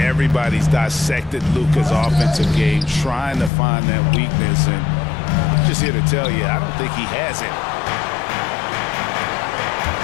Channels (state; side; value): drops out; right; at 3.5 s